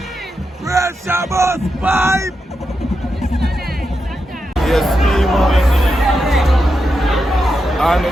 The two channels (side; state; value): both; normal; correlation 0.87